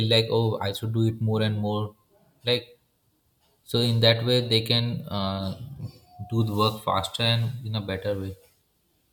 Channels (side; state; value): both; identical; correlation 1.00